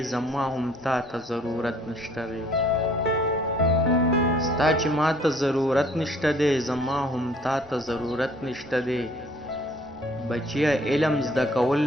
زما هم تا ته ضرورت نشته دی ستا چې ما ته ضرورت نشته دی زما هم تا ته ضرورت نشته دی بچیا علم زده کول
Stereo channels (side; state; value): both; normal; correlation 0.57